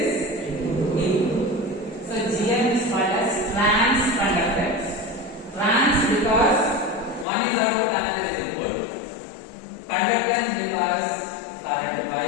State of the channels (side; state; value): right; drops out; at 7.2 s